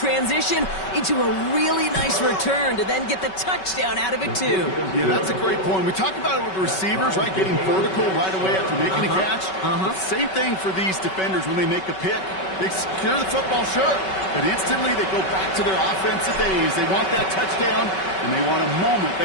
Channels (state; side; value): late; right; 5.3 ms